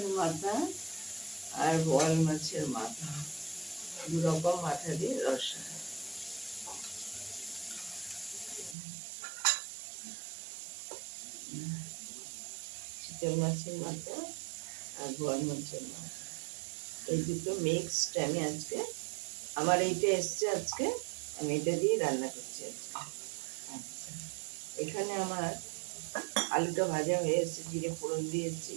মাথা আর বোয়াল মাছের মাথা, দু রকম মাথা দিয়ে রসা। চিতল মাছের মাথা আর বোয়াল মাছের মাথা, এই দুটো মিক্সড আমি আজকে, আমার এইটা এসছে আজকে, আমি এটা দিয়ে রান্না করছি আজকে। আচ্ছা, এখানে আমার আলুটা ভাজা হয়ে এসেছে, জিরে ফোড়ন দিয়েছি।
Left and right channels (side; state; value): left; drops out; at 8.8 s